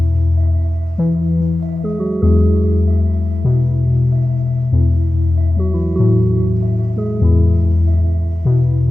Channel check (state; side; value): normal; both; correlation 0.96